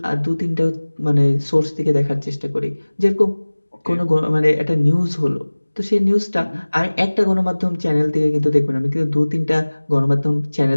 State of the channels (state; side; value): inverted; both; correlation -1.00